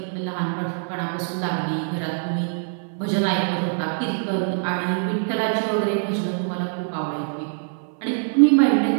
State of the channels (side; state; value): left; silent; 56 dB below the other